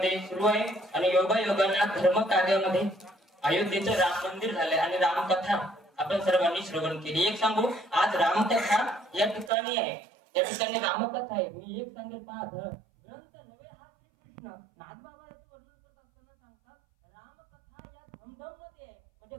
सुरू आहे आणि योगायोगाने धर्म कार्यामध्ये अयोध्येचं राम मंदिर झालंय आणि रामकथा आपण सर्वांनी श्रवण केली. एक सांगू, आज रामकथा या ठिकाणी आहे, या ठिकाणी रामकथा आहे. मी एक सांगेल, पहा ग्रंथ नवे हा श्रीकृष्ण नाथबाबा याचं वर्णन करत असताना सांगतात रामकथा या धमधममध्ये आहे, म्हणजे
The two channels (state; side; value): drops out; left; at 9.5 s